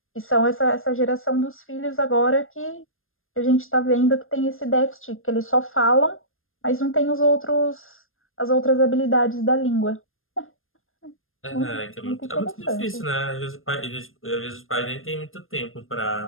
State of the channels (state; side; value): late; right; 0.60 ms